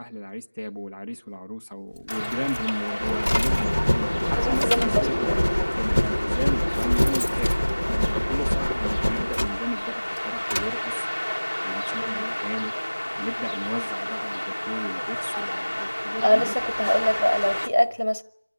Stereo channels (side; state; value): both; inverted; correlation -1.00